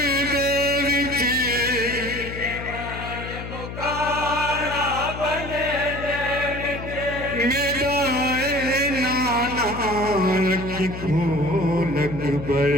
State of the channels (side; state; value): left; noise; hum, 9 dB below the sound